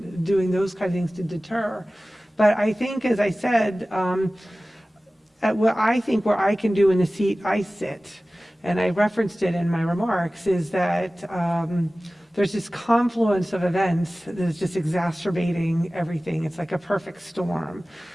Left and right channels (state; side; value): normal; both; correlation 0.97